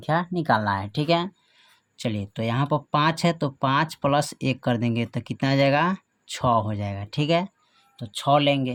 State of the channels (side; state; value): both; identical; correlation 1.00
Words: निकालना है। ठीक है, चलिए तो यहाँ पर 5 है तो 5 + 1 कर देंगे तो कितना आ जाएगा, 6 हो जाएगा। ठीक है, तो 6